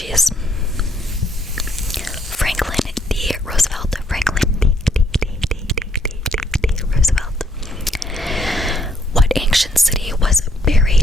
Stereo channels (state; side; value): normal; both; correlation 0.70